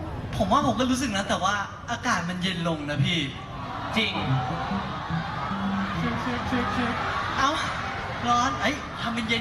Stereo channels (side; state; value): both; identical; correlation 1.00